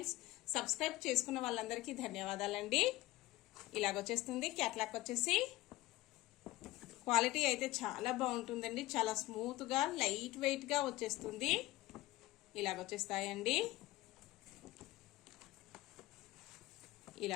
సబ్స్క్రైబ్ చేసుకున్న వాళ్ళందరికీ ధన్యవాదాలండి. ఇలాగొచ్చేస్తుంది. క్యాట్లాగ్ వచ్చేసి క్వాలిటీ అయితే చాలా బాగుంటుందండి. చాలా స్మూత్ గా లైట్ వెయిట్ గా వచ్చేస్తుంది. ఇలాగొచ్చేస్తాయండి.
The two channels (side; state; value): right; quieter; 17.9 dB